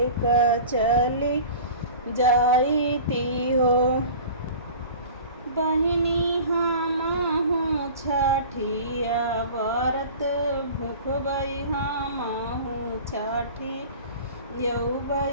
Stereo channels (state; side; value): inverted; both; correlation -0.40